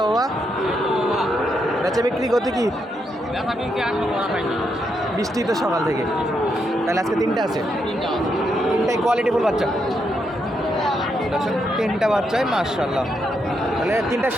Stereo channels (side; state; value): both; normal; correlation 0.80